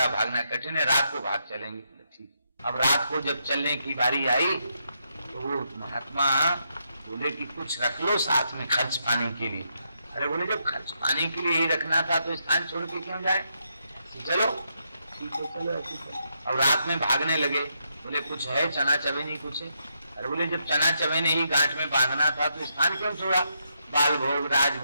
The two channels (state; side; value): inverted; both; correlation -0.80